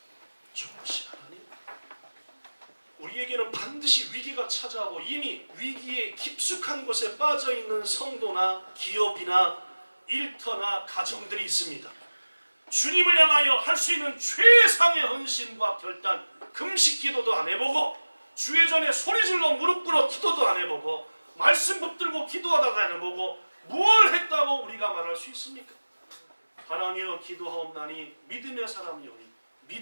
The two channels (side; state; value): both; inverted; correlation -1.00